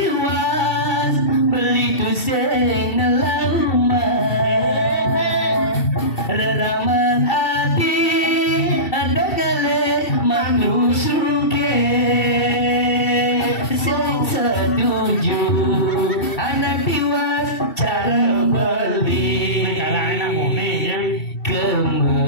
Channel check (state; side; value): late; right; 2.7 ms